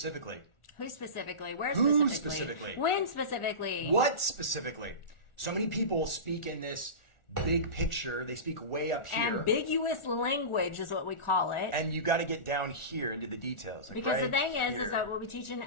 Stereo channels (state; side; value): late; right; 1.4 ms